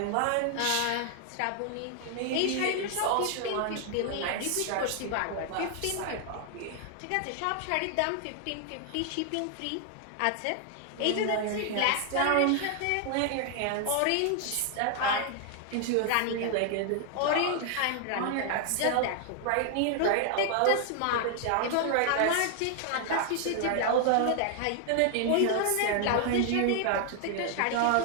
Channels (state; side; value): different; both; correlation 0.00